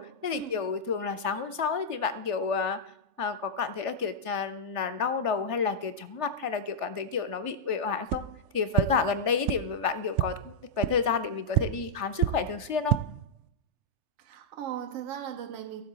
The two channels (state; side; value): late; left; 3.4 ms